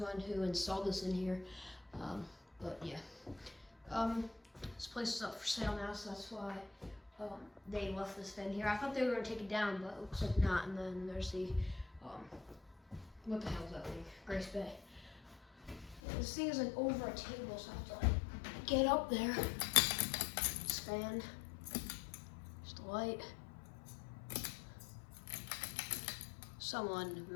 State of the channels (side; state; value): right; drops out; at 16.0 s